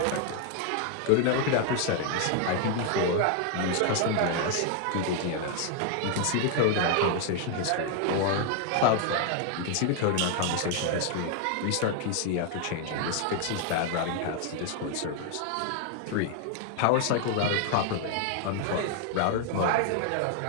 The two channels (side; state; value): both; different; correlation 0.00